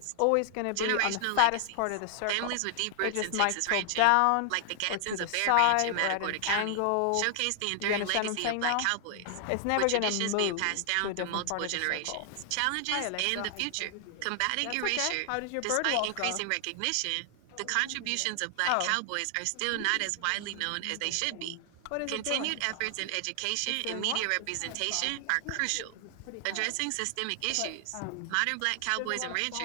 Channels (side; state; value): both; different; correlation 0.00